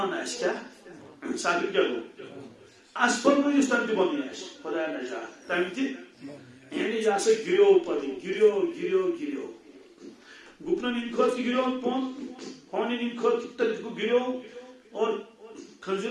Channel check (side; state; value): both; identical; correlation 1.00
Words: اس کیا سافل کیا گو اسفل میں اس تم بن اس خدا نجات تم تھی یعنی یا سے گریو پڑی گریو گریو گریو گپنا نیم خود گریو پون ہونے نیم خود تک گریو اور